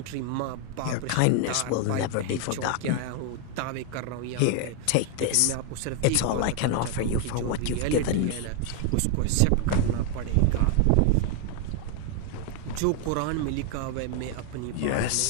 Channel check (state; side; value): different; both; correlation 0.00